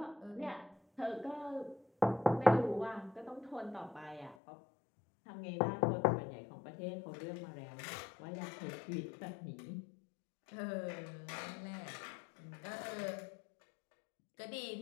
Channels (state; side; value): drops out; right; at 4.4 s